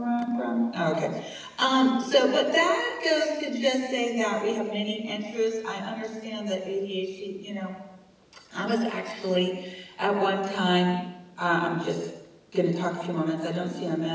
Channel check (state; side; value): identical; both; correlation 1.00